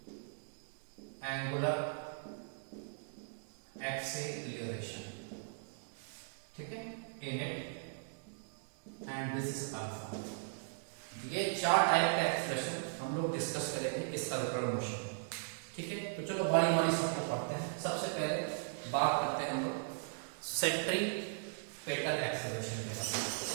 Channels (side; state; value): left; silent; digital silence